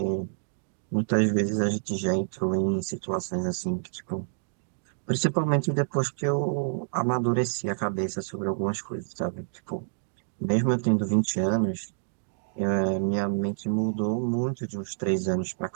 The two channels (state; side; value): silent; left; digital silence